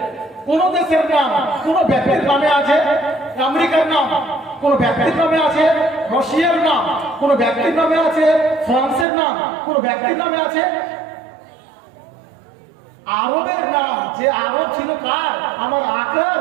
কোন দেশের নাম কোন ব্যক্তির নামে আছে? আমেরিকার নাম কোন ব্যক্তির নামে আছে? রাশিয়ার নাম কোন ব্যক্তির নামে আছে? ফ্রান্সের নাম কোন ব্যক্তির নামে আছে? আরবের নাম, যে আরব ছিল কার? আমার আকার।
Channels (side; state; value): left; drops out; at 9.1 s